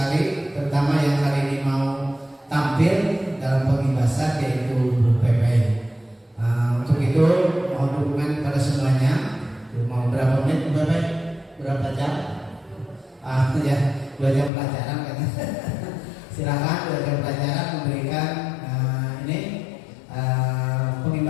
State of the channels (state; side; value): drops out; right; at 14.5 s